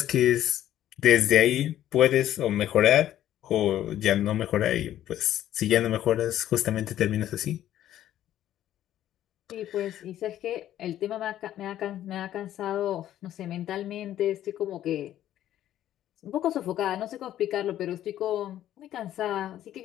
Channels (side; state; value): right; quieter; 12.3 dB